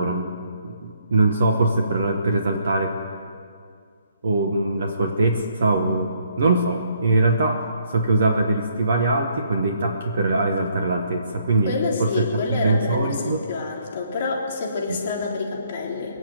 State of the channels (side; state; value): both; inverted; correlation -0.68